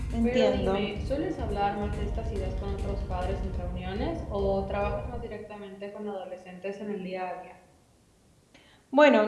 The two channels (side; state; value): both; identical; correlation 1.00